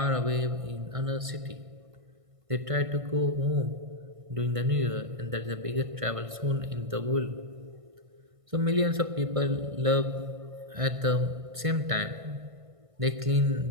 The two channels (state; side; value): late; left; 1.5 ms